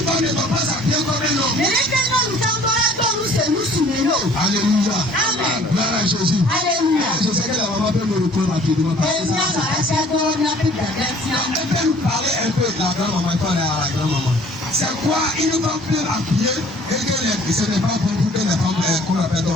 femme ne doit pas s'habiller comme un homme. Alléluia. Gloire à Jésus. Je sais que la maman peut me répondre rapidement. Elle peut nous parler un peu de la grand-maman. Il faut aller à la grand-maman. C'est quoi une femme peut habiller et que ce n'est pas bon pour que les femmes qu'on appelle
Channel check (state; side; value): normal; both; correlation 0.53